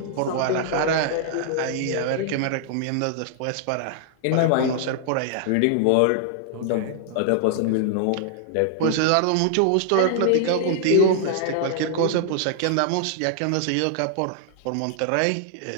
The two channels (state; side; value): different; both; correlation -0.01